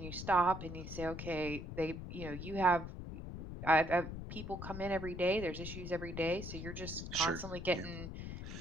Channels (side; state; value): left; noise; rumble, 8 dB below the sound